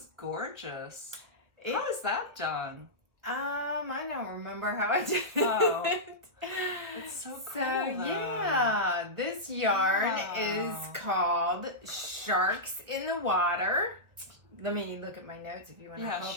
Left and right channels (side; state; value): left; late; 1.4 ms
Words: gorgeous. It- How is that done? I don't remember how I did Oh. it. It's so cool, So though. yeah, this yarn Wow. is called Sharks in the Water. Let me look at my notes if you want to Yeah, hold